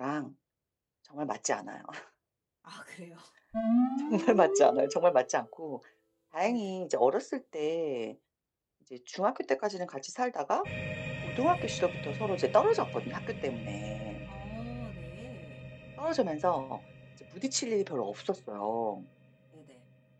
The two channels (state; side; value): identical; both; correlation 1.00